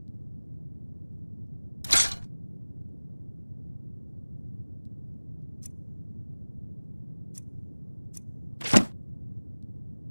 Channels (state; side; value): inverted; both; correlation -1.00